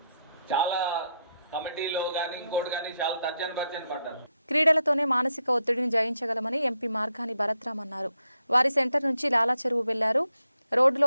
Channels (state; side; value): inverted; both; correlation -0.81